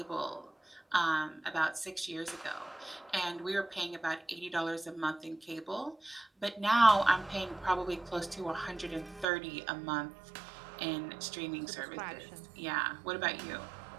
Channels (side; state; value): left; drops out; at 9.2 s